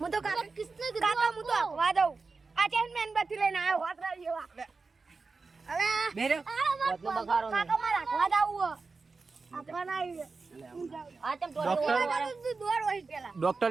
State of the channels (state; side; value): quieter; left; 4.2 dB